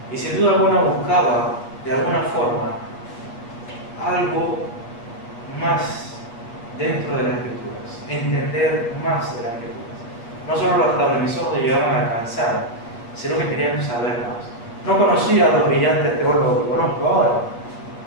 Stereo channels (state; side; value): late; right; 8.3 ms